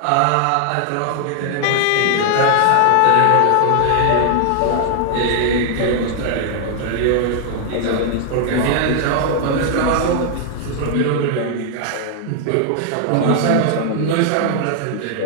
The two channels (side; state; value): both; different; correlation 0.00